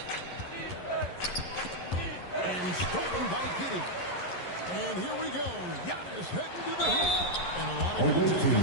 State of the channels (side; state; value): right; late; 11 ms